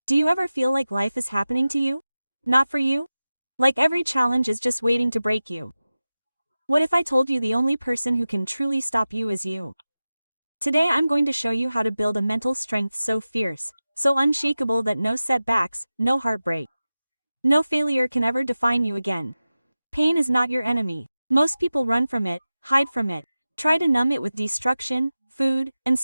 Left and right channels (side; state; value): both; inverted; correlation -0.95